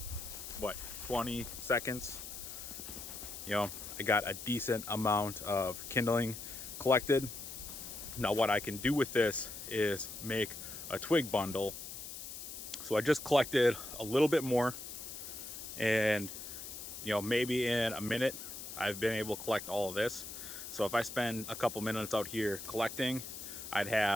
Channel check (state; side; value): noise; left; hiss, 9 dB below the sound